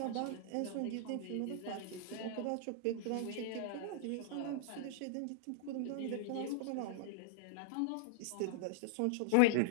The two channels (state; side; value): different; both; correlation -0.01